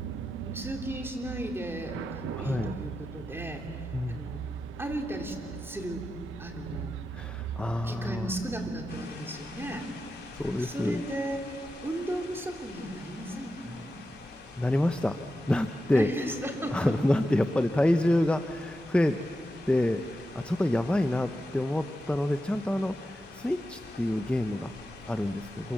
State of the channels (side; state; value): both; normal; correlation 0.89